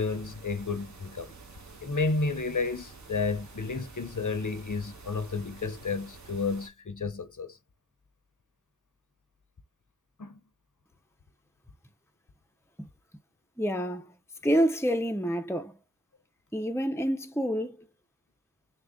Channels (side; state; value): both; normal; correlation 0.55